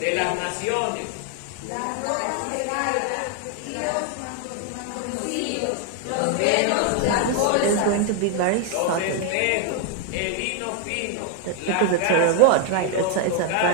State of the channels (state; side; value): different; both; correlation 0.01